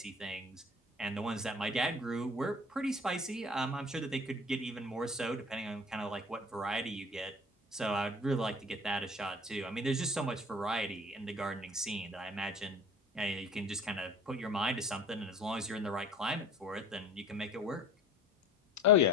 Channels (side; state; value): both; normal; correlation 0.45